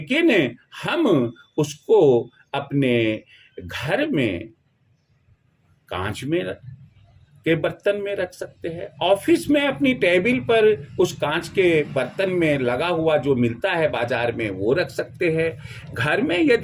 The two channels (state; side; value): identical; both; correlation 1.00